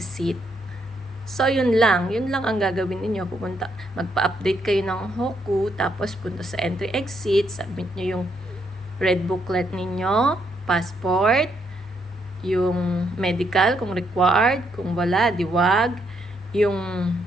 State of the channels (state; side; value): normal; both; correlation 0.75